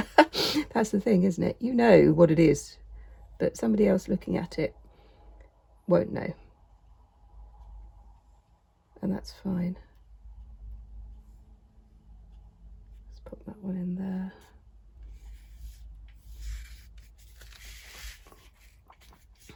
That's the thing, isn't it? You know what it is, but somebody else looking at it won't know. And that's fine. Let's put that one in there.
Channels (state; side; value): identical; both; correlation 1.00